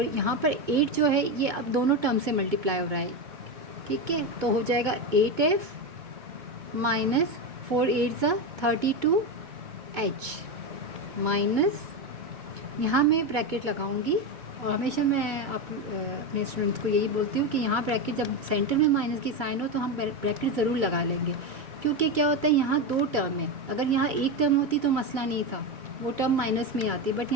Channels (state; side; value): late; left; 2.2 ms